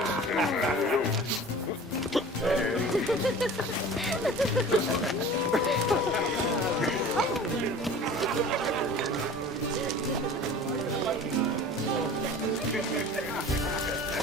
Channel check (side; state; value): both; normal; correlation 0.41